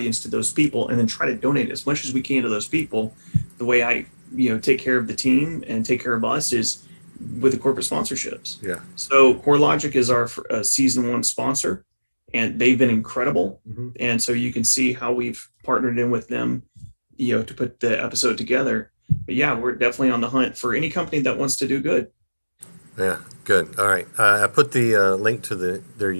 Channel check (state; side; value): inverted; both; correlation -1.00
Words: to those people, and then try to donate as much as we can to those people. The way I, you know, take care of the team and take care of us is with the corporate sponsorships. Yeah. So CoreLogic is our season 1 sponsor, and they've been incredible. Mm-hmm. And so you can see how we've partnered in with them, to put the episode together. But yeah, we're definitely on the hunt for any company that wants to do good. Yeah, good. All right. I put the link to their